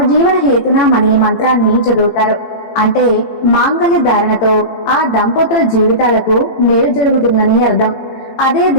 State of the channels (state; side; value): late; right; 18 ms